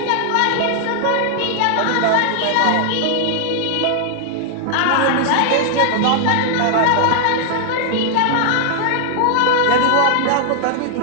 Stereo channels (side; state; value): both; different; correlation 0.00